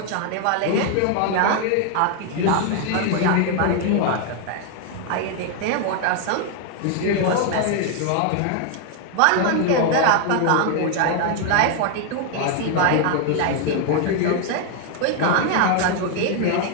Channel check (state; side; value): different; both; correlation 0.00